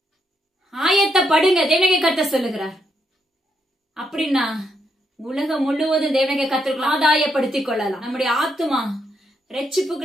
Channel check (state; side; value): normal; both; correlation 0.77